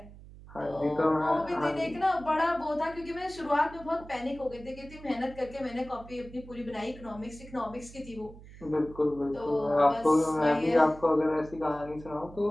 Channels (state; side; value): noise; right; hum, 18 dB below the sound